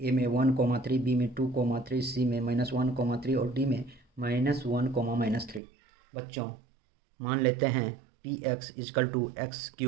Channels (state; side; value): drops out; left; at 5.6 s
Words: में 1, 3, बी में 2, 3, सी में -1, 3 और डी में -1, -3। बच्चों मान लेते हैं px = x³